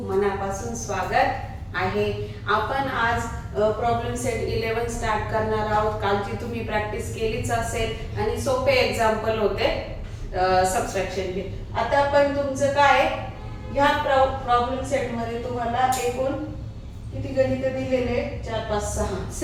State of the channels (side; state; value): both; identical; correlation 1.00